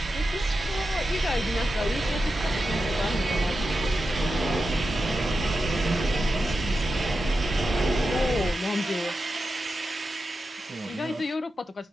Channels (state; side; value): normal; both; correlation 0.90